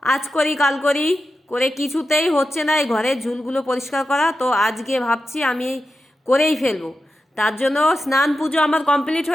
আজ করি কাল করি করে কিছুতেই হচ্ছে না এই ঘরের ঝুলগুলো পরিষ্কার করা। তো আজকে ভাবছি আমি করেই ফেলবো। তার জন্য স্নান পুজো আমার কমপ্লিট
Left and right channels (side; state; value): both; normal; correlation 0.90